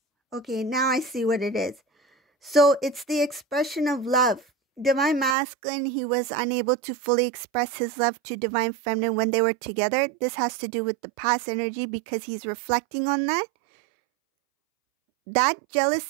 okay, now I see what it is. So it's the expression of love. Divine masculine, he was unable to fully express his love to divine feminine when they were together. This has to do with the past energy because he's reflecting on that. That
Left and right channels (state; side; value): drops out; left; at 5.4 s